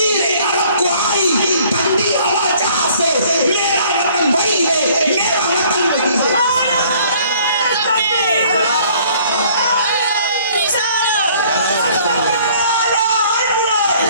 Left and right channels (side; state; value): both; inverted; correlation -0.57